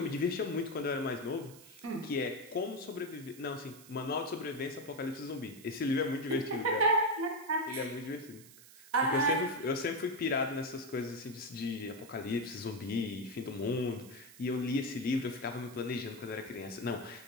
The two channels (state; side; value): noise; right; hiss, 20 dB below the sound